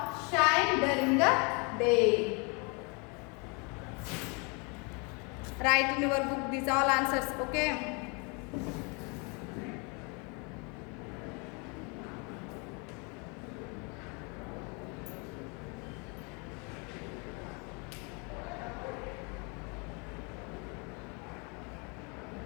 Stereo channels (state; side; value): quieter; right; 32.2 dB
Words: shine during the day. Write in your book these all answers. Okay.